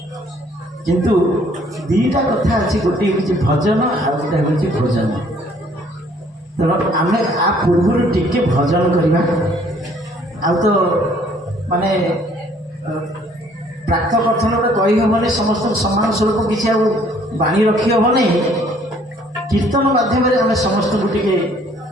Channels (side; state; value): both; normal; correlation 0.60